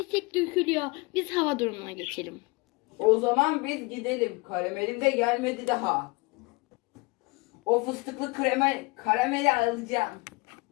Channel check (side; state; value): right; quieter; 26.1 dB